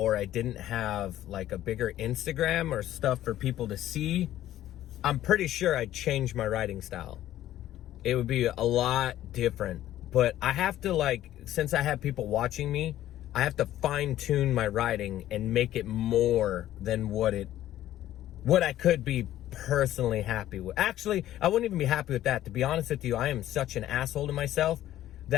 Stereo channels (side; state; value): right; quieter; 13.2 dB